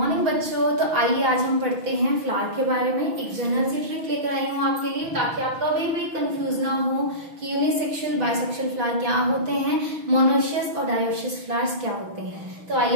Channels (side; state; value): left; late; 6.2 ms